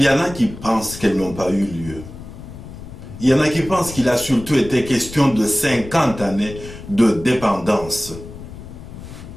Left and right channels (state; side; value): noise; left; rumble, 14 dB below the sound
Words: y en a qui pensent qu'elles n'ont pas eu lieu. Il y en a qui pensent qu'il a surtout été question de 50 années de dépendance.